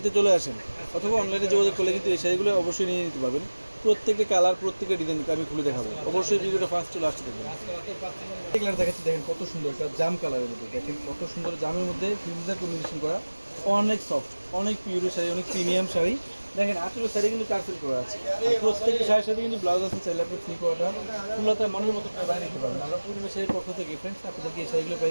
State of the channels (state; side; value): inverted; both; correlation -1.00